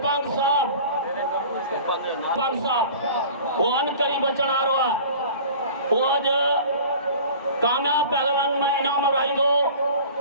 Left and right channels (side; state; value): both; inverted; correlation -0.42